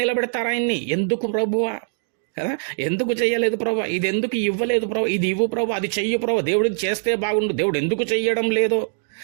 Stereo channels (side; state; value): left; silent; digital silence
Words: ఆయన్ని. ఎందుకు ప్రభువా కదా, ఎందుకు చెయ్యలేదు ప్రభు, ఇది ఎందుకు ఇవ్వలేదు ప్రభు, ఇది ఇవ్వు ప్రభు, అది చెయ్యు ప్రభు, దేవుడికి చేస్తే బాగుండు, దేవుడు ఎందుకు చెయ్యడం లేదు